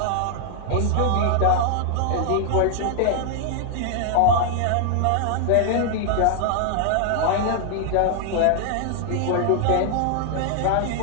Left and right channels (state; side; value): different; both; correlation 0.00